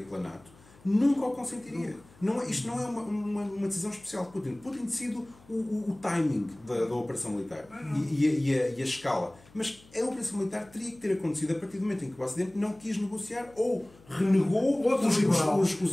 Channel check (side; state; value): left; noise; hum, 26 dB below the sound